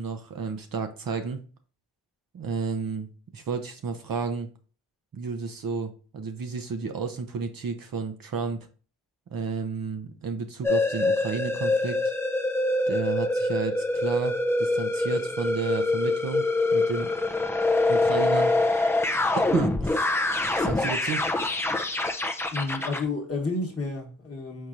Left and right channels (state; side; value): normal; both; correlation 0.67